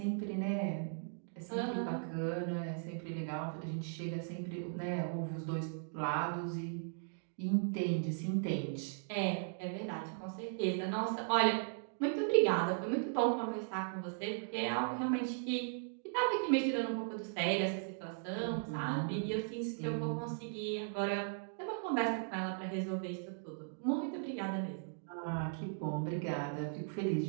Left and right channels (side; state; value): left; silent; digital silence